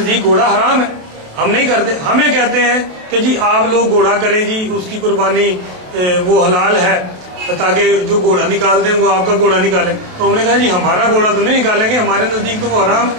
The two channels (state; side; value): late; left; 28 ms